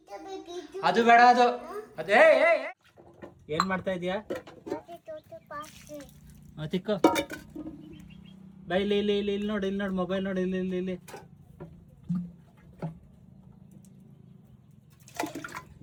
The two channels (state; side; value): identical; both; correlation 1.00